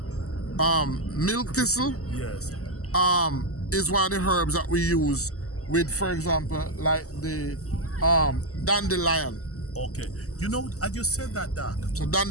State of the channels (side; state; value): right; late; 0.65 ms